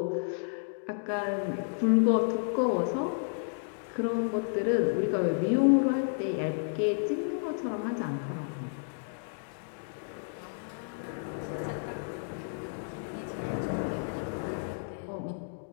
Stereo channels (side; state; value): right; silent; digital silence